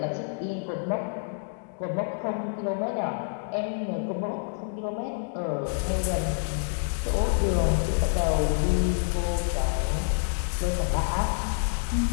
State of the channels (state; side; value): silent; right; digital silence